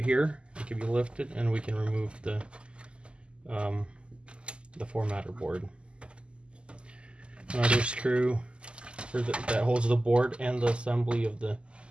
here. It can be lifted, and we can remove the formatter board. Another screw that holds the board and the assembly of the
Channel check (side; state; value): left; late; 0.052 ms